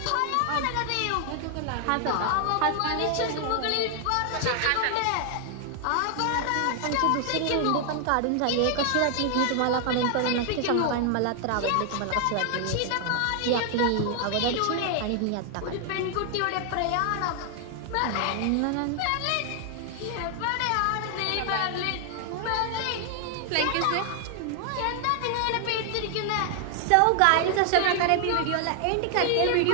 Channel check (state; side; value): different; both; correlation 0.00